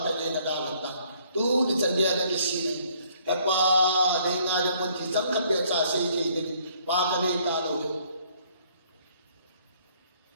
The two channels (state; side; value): inverted; both; correlation -0.62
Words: na dagat na. Tu, di sandiaga kisini. Kapa, dahil nga naman kisang kapiyat sa sige, paganay talo yun.